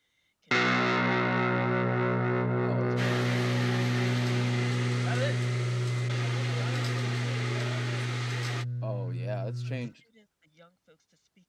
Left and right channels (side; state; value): both; identical; correlation 1.00